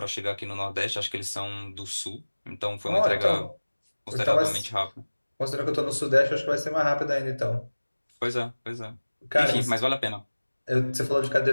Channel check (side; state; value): both; inverted; correlation -1.00